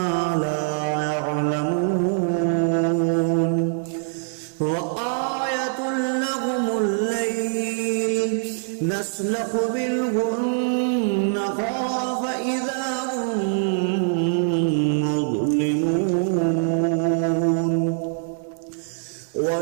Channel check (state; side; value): silent; left; digital silence